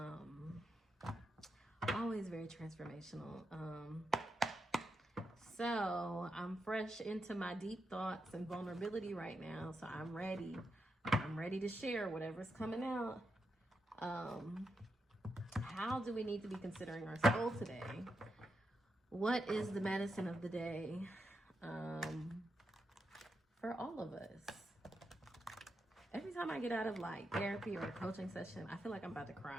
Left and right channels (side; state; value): both; normal; correlation 0.85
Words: Always very transformational. So I'm fresh into my deep thoughts and vulnerability right now. So I'm ready. I'm ready to share whatever's coming out. How do we need to be considering our soul today? What is the medicine of the day for all of us? Every time I get out of like therapy or a coaching session, I feel like I'm about to